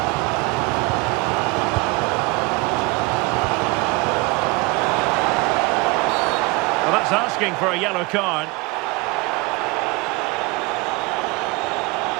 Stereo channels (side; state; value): left; quieter; 24.9 dB